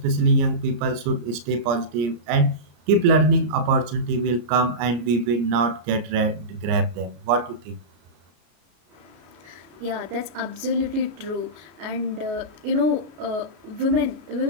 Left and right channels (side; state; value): left; late; 34 ms